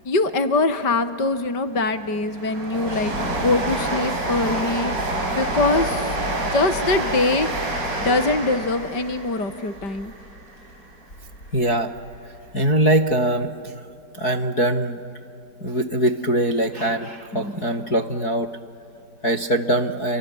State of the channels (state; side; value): late; right; 4.7 ms